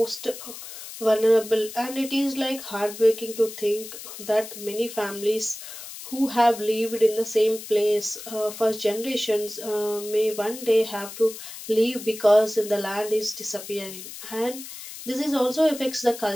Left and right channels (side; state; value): left; noise; hiss, 12 dB below the sound